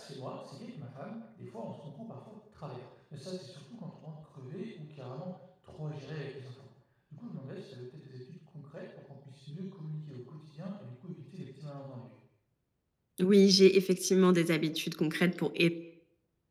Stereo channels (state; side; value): identical; both; correlation 1.00